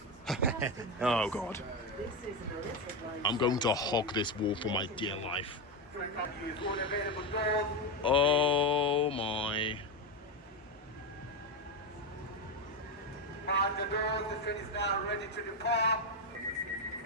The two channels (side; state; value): both; normal; correlation 0.11